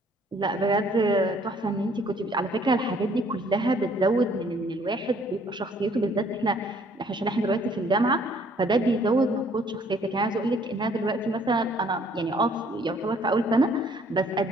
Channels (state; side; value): normal; both; correlation 0.61